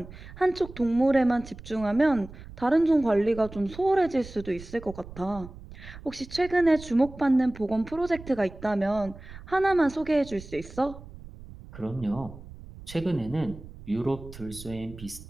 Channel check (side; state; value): right; noise; rumble, 16 dB below the sound